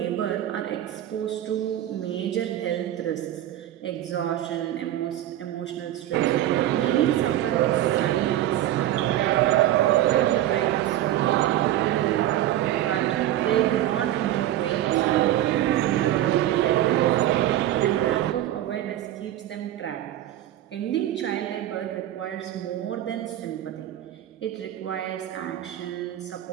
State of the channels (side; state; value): left; quieter; 13.1 dB